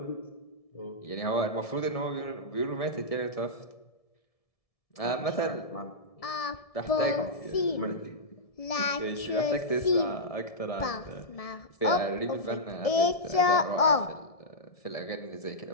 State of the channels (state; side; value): late; right; 1.7 ms